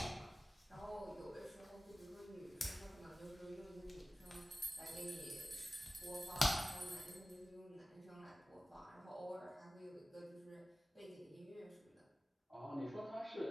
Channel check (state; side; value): normal; both; correlation 0.97